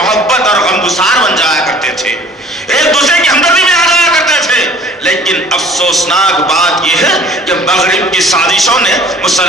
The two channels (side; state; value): both; normal; correlation 0.50